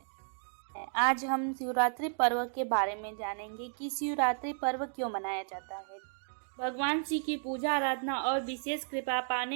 आज हम शिवरात्रि पर्व के बारे में जानेंगे कि शिवरात्रि पर्व क्यों मनाया जाता है। भगवान शिव की पूजा आराधना और विशेष कृपा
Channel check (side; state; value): left; silent; digital silence